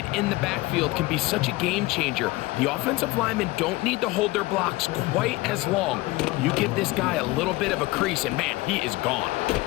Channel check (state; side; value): quieter; right; 20.5 dB